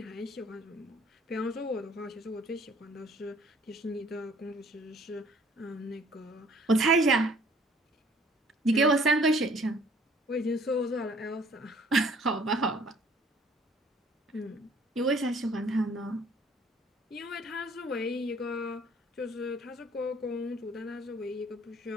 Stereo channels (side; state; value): both; normal; correlation 0.57